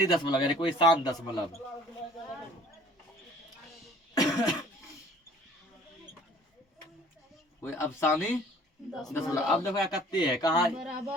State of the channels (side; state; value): both; normal; correlation 0.52